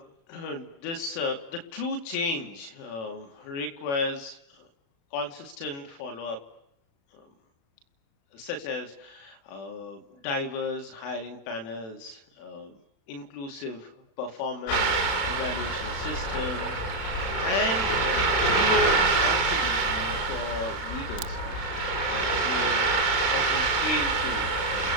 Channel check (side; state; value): right; late; 36 ms